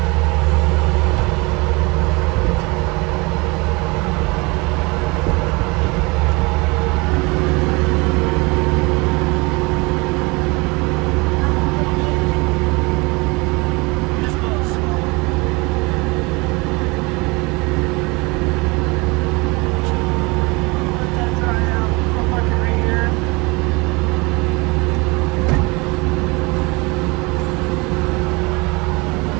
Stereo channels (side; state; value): left; quieter; 26.2 dB